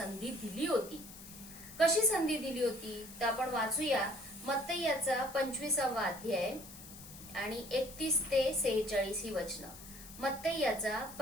दिली होती. कशी संधी दिली होती तर आपण वाचूया मत्तई याचा 25वा अध्याय आणि 31 ते 46 ही वचनं. मत्तई याचा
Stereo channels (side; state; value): left; noise; hiss, 16 dB below the sound